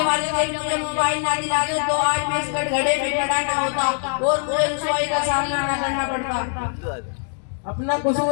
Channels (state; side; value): silent; right; digital silence